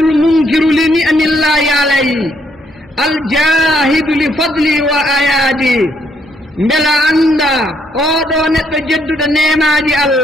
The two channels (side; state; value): both; normal; correlation 0.72